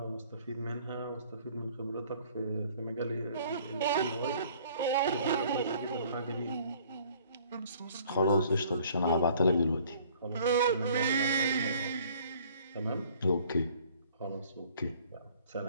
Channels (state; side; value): inverted; both; correlation -0.56